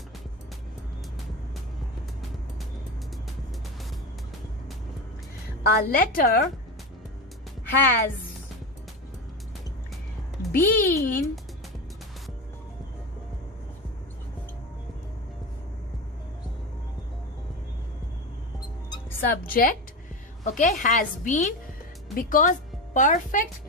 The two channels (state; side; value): normal; both; correlation 0.20